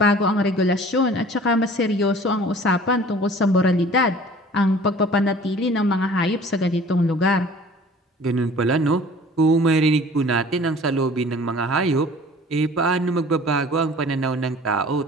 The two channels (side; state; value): both; normal; correlation 0.48